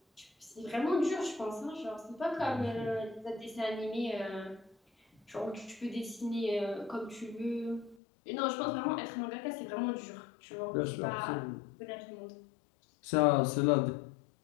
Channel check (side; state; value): right; drops out; at 8.0 s